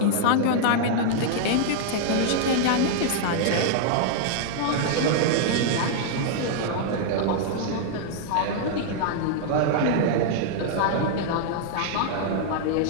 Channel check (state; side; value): different; both; correlation -0.01